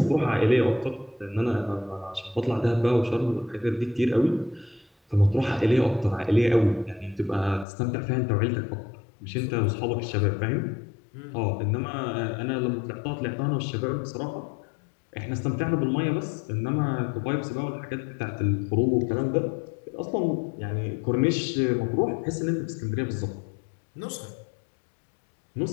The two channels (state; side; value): drops out; right; at 7.7 s